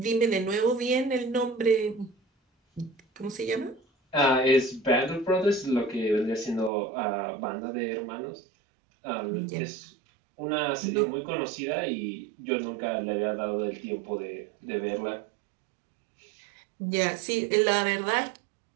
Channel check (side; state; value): left; drops out; at 6.7 s